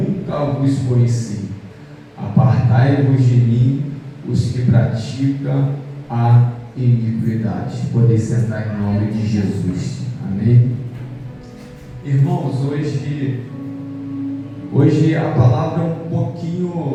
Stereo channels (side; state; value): both; identical; correlation 1.00